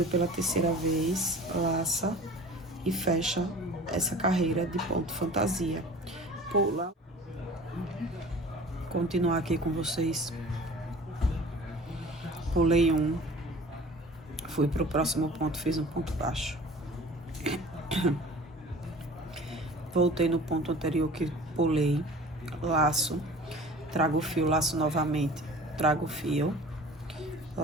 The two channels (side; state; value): both; normal; correlation 0.43